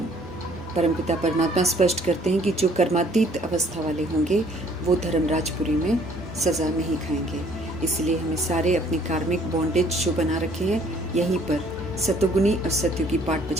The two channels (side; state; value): both; normal; correlation 0.59